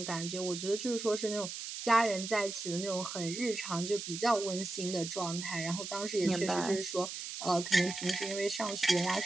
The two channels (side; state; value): right; noise; hiss, 7 dB below the sound